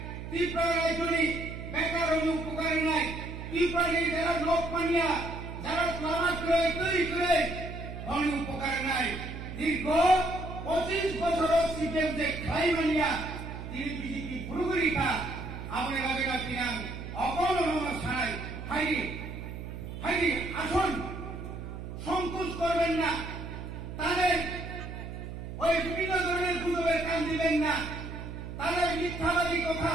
ত্রিপুরা রাজ্যনি বেকার উপকার নাই ত্রিপুরানি যারা লোক পানিয়া যারা প্লামাত করে তৈরি করে অনেক উপকার নাই দীর্ঘ 25 বছর সিপিএম যে খাই মানিয়া তিনি বিজেপি পুরোপুরিকা আপনি ভাবে না কিনান অপনরম ছাড়াই হাইরি আসুন সংকোচ করবেন না তাদের ওই বিভিন্ন ধরনের গুজবের কান দিবেন না তাদের মিথ্যাবাদী কথা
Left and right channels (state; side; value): noise; right; hum, 9 dB below the sound